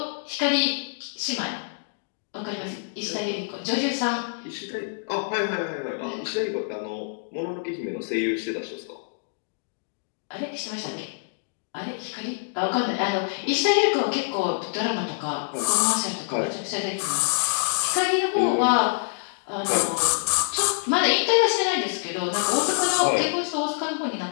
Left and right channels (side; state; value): right; silent; digital silence